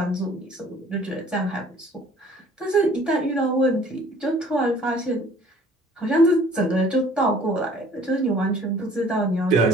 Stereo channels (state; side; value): normal; both; correlation 0.53